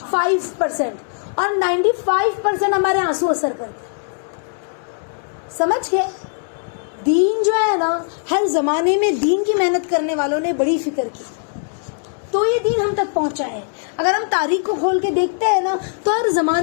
5%. اور 95% ہمارے آنسو اثر کرتے. سمجھ گئے؟ دین جو ہے نا, ہر زمانے میں دین کی محنت کرنے والوں نے بڑی فکر کی تو یہ دین ہم تک پہنچا ہے. اگر ہم تاریخ کو کھول کے دیکھتے ہیں نا تو ہر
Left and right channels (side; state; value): right; silent; digital silence